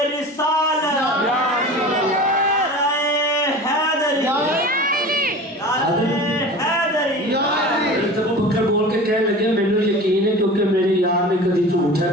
बोल के कह लगे मैंने यकीन है क्योंकि मेरे यार ने कभी झूठ है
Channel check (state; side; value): normal; both; correlation 0.36